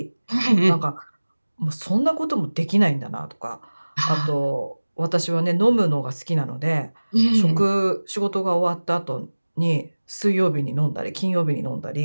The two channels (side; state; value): both; inverted; correlation -1.00